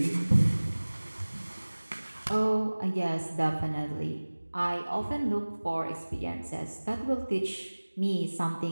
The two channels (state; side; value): inverted; both; correlation -1.00